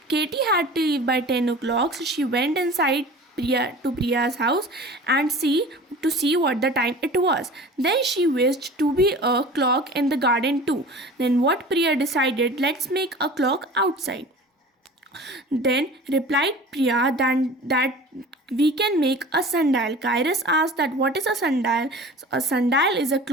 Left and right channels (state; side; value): normal; both; correlation 0.40